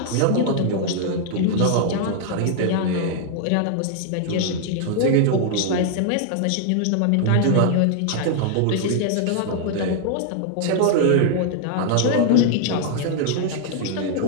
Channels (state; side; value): different; both; correlation -0.01